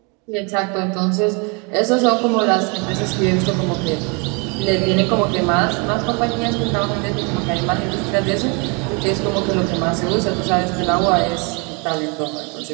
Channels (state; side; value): quieter; left; 32.3 dB